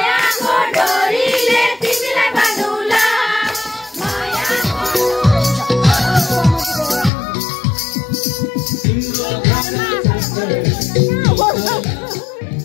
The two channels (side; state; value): right; drops out; at 7.1 s